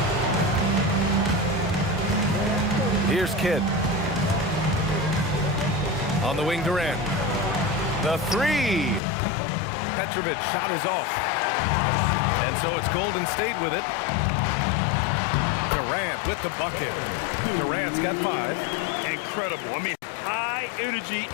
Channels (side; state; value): right; drops out; at 9.0 s